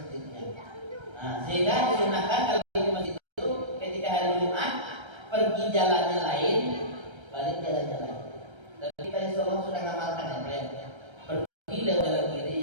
Nah, sehingga disunahkan kalau pergi ke masjid itu ketika hari Jumat pergi jalannya lain, balik jalannya lain. Tapi kita insya Allah sudah ngamalkan ya, pergi lewat jalan kiri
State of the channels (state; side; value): late; left; 1.3 ms